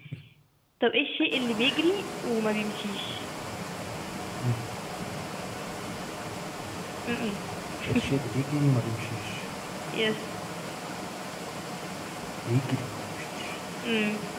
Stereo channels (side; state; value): both; identical; correlation 1.00